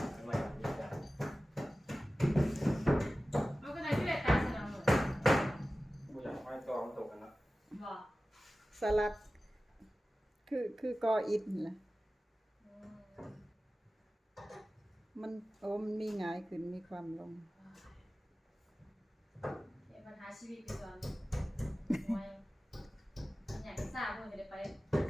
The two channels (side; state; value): both; normal; correlation 0.96